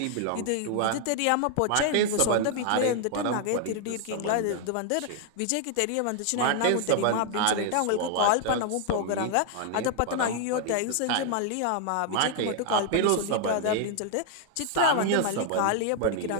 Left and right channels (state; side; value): different; both; correlation 0.00